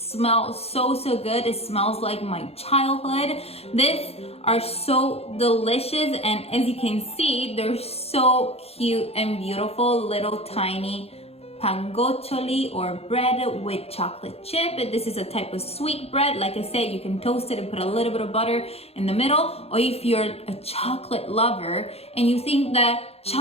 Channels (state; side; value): late; right; 0.29 ms